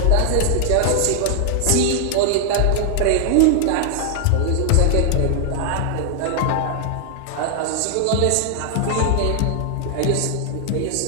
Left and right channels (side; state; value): both; different; correlation 0.00